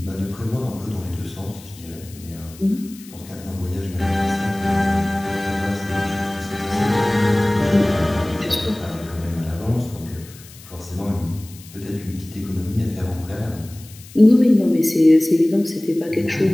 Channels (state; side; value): noise; left; hiss, 20 dB below the sound